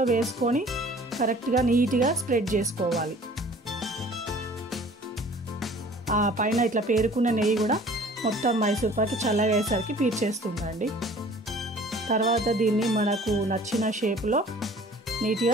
వేసుకొని కరెక్ట్గా నీట్గా స్ప్రెడ్ చేసుకోవాలి. ఆ పైన ఇట్లా పేరుకున్న నెయ్యి కూడా మొత్తం మైసూర్ పాక్ చల్లగా అయ్యేసరికి పీల్చేస్తుందండి. తర్వాత దీన్ని మనకు నచ్చిన షేప్లో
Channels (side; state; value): both; normal; correlation 0.50